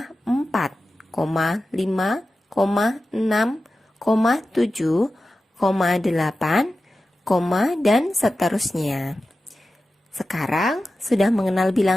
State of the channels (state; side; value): normal; both; correlation 0.94